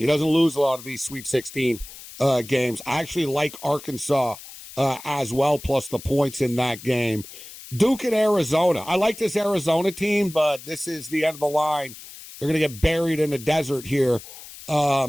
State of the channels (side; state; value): left; noise; hiss, 16 dB below the sound